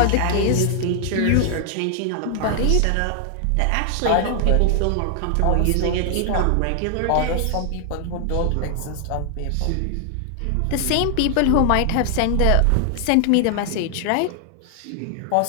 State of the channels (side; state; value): both; different; correlation 0.00